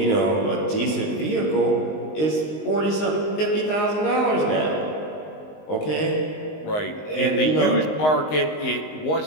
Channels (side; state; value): right; late; 19 ms